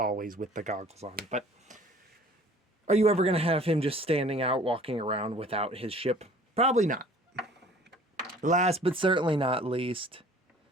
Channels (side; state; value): both; normal; correlation 0.50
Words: with the goggles on. But are you ever going to have him just standing out, walking around without his ship? Probably not. Last but certainly not least,